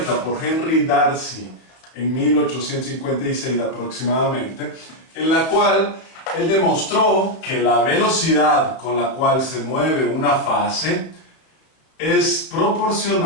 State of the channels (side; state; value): right; late; 31 ms